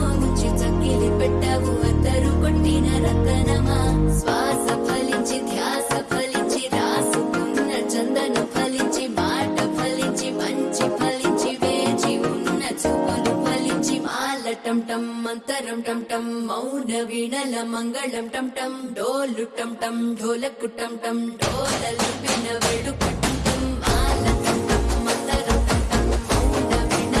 ముంచి చక్కిలి పెట్టావు అద్దరు కొట్టిన రతనమా శ్వాస ఫలించి ధ్యాస ఫలించి రాసుకున్న చందను ఫలించి మాట ఫలించి మంచి ఫలించి వేచి ఉన్న చూపులు ఫలించి మాల టంటం మంతరం టంటం మౌన వీణల మంగళం టంటం డోలు టంటం ఢోలకు టంటం డోలలు విన వేడుక టంటం మాల టంటం మంతరం టంటం మౌన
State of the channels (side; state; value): both; identical; correlation 1.00